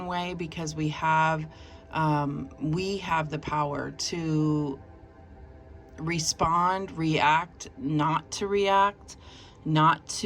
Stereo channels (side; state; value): both; identical; correlation 1.00